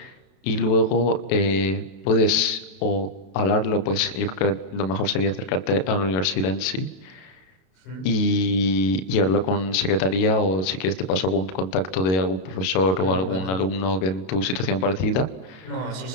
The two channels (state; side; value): late; right; 32 ms